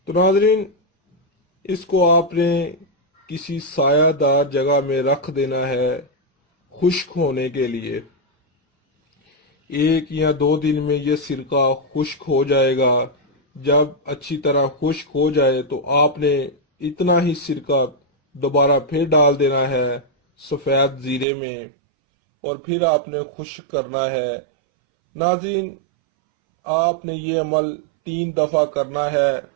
تو ناظرین، اس کو آپ نے کسی سایہ دار جگہ میں رکھ دینا ہے خشک ہونے کے لیے۔ 1 یا 2 دن میں یہ سرکہ خشک ہو جائے گا۔ جب اچھی طرح خشک ہو جائے تو آپ نے اتنا ہی سرکہ دوبارہ پھر ڈال دینا ہے سفید زیرے میں، اور پھر آپ نے خشک کرنا ہے۔ ناظرین، آپ نے یہ عمل 3 دفعہ کرنا ہے۔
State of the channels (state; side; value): drops out; left; at 21.2 s